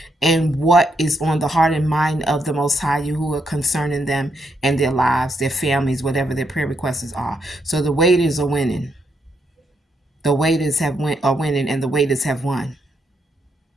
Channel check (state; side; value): normal; both; correlation 0.78